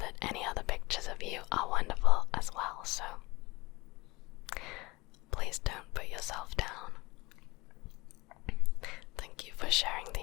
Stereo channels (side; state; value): right; quieter; 22.8 dB